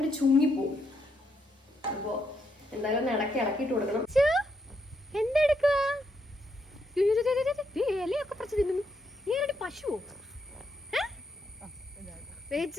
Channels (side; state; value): both; normal; correlation 0.78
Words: ചുങ്ങിപ്പോവും. അപ്പോൾ എന്തായാലും ഒന്ന് ഇളക്കിയിട്ട് കൊടുക്കണം. എന്തെടുക്കുക? ഇലയൊക്കെ പറിച്ച് തിന്നുന്നു. നീ ആരുടെ പശുവോ?